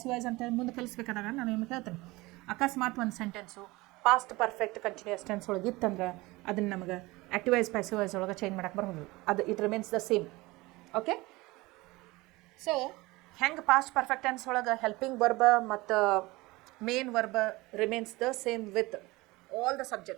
wise ಅಂತ ಮುಂದೆ ಕಲಿಸ್ಬೇಕಾದಾಗ ನಾನು ನಿಮಗೆ ಹೇಳ್ತೇನೆ. ಅಕಸ್ಮಾತ್ ಒಂದು sentence past perfect continuous tense ಒಳಗೆ ಇತ್ತಂದ್ರೆ ಅದನ್ನು ನಮಗೆ ಆಕ್ಟಿವ್ ವೈಸ್ ಪ್ಯಾಸಿವ್ ವೈಸ್ ಒಳಗೆ ಚೇಂಜ್ ಮಾಡಕ್ಕೆ ಬರೋದು. ಅದು it remains the same. Okay, so ಹೆಂಗೆ ಪಾಸ್ಟ್ ಪರ್ಫೆಕ್ಟ್ ಟೆನ್ಸ್ ಒಳಗೆ ಹೆಲ್ಪಿಂಗ್ ವರ್ಬ ಮತ್ತು main verb remains the same with all the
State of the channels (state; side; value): quieter; left; 21.5 dB